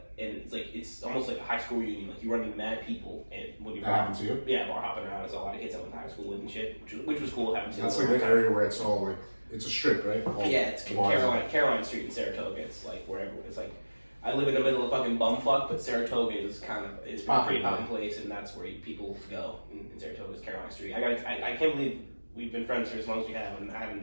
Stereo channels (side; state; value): both; inverted; correlation -1.00